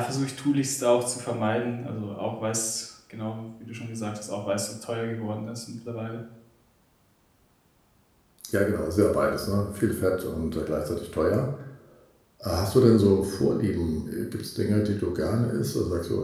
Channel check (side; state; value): both; identical; correlation 1.00